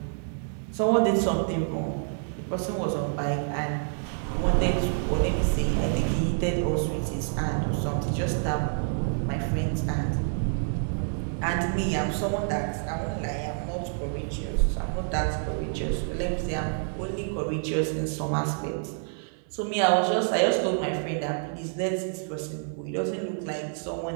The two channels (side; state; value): left; silent; 59 dB below the other